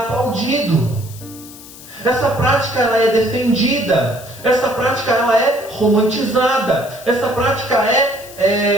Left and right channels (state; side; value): noise; left; hiss, 18 dB below the sound